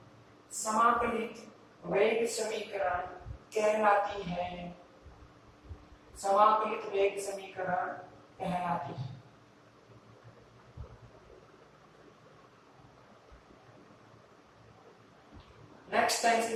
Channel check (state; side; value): identical; both; correlation 1.00